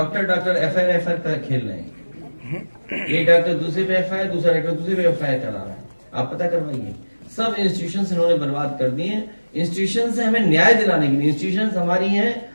एफआईआर खेल रहे हैं। एक डॉक्टर दूसरे पे एफआईआर, दूसरा डॉक्टर दूसरे पे एफआईआर चला रहा है। आप पता करवाइए। सब इंस्टीट्यूशन इन्होंने बर्बाद कर दिए हैं। इंस्टीट्यूशन से हमें न्याय दिलाने के लिए, इंस्टीट्यूशन हमारी हैं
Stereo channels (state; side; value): inverted; both; correlation -1.00